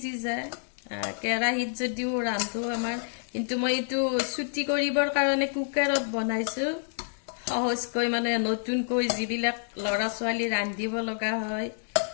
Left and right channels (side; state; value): right; silent; digital silence